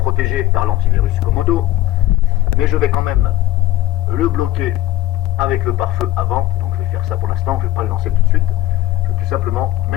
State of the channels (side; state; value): right; quieter; 14.8 dB